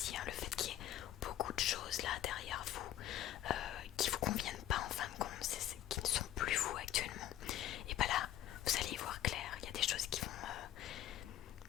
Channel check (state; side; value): quieter; right; 12.4 dB